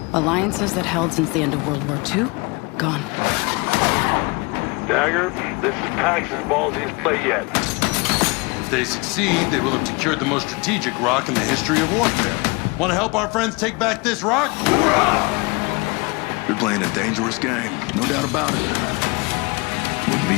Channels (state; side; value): quieter; right; 27.4 dB